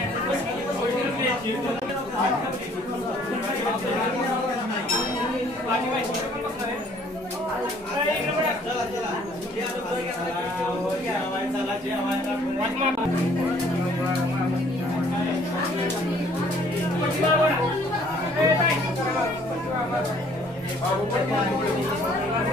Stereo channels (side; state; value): both; normal; correlation 0.59